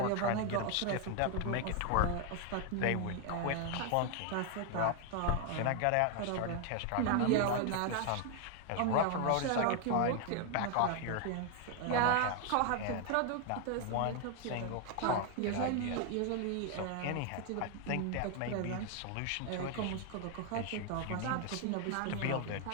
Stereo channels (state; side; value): different; both; correlation 0.00